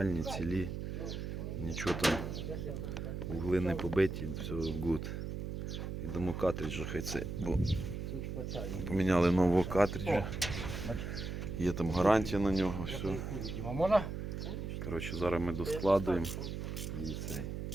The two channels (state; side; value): noise; right; hum, 5 dB below the sound